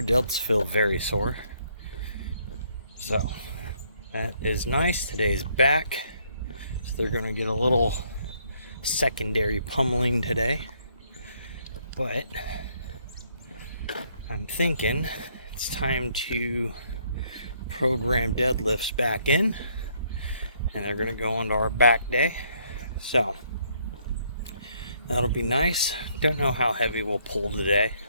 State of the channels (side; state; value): both; inverted; correlation -0.69